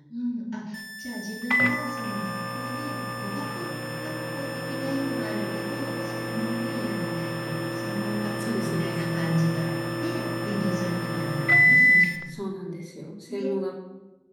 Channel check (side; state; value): both; identical; correlation 1.00